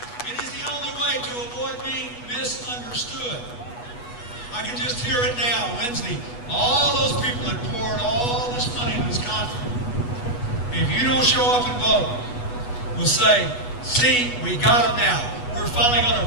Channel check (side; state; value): right; late; 8.2 ms